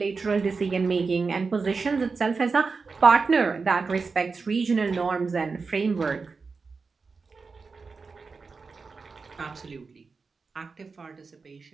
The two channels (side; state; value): left; quieter; 4.6 dB